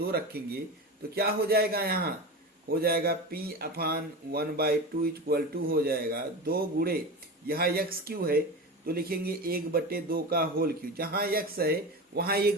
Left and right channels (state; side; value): normal; both; correlation 0.26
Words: रखेंगे तो क्या हो जाएगा, यहाँ हो जाएगा p/1/2 इक्वल टू हो जाएगा 2 गुणे यहाँ x³ है तो लिखेंगे 1/2 का होल क्यूब, जहां x है वहां